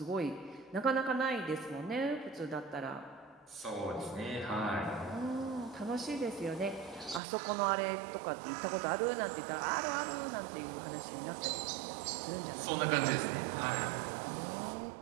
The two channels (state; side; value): drops out; left; at 7.2 s